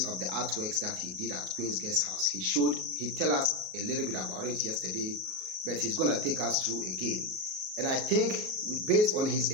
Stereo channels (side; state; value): left; late; 38 ms